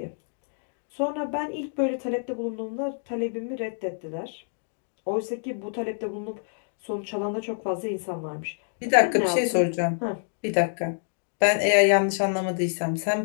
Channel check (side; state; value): right; silent; digital silence